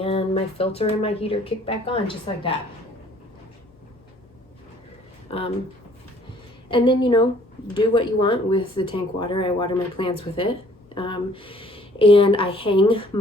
my filter and my heater kick back on just like that. And then, you know, do what you want with the tank water. I water my plants with it. And I hang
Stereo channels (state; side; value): normal; both; correlation 0.57